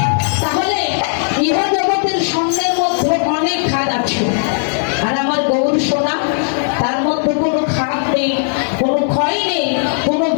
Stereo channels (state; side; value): silent; right; 67 dB below the other